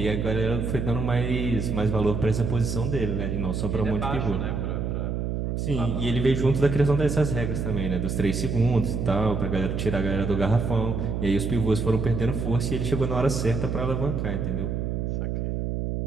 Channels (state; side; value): noise; right; hum, 1 dB below the sound